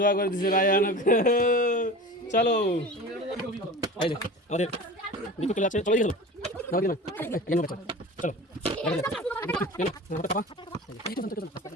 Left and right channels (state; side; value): normal; both; correlation 0.35